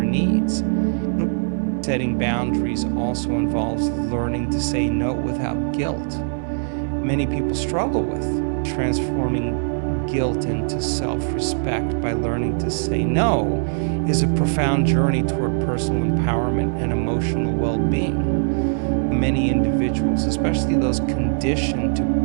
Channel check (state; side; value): silent; left; digital silence